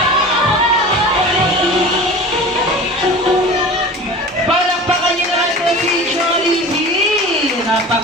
Palakpakan niyo naman po si Jollibee.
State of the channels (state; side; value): normal; both; correlation 0.37